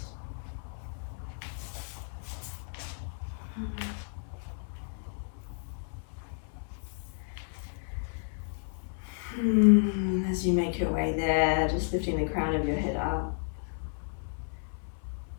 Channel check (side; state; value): right; silent; 56 dB below the other